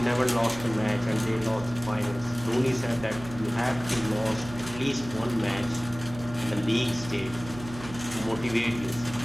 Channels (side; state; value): right; noise; hum, 14 dB below the sound